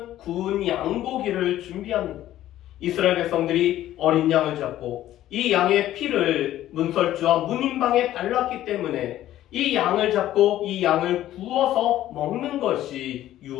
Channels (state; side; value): quieter; right; 13.4 dB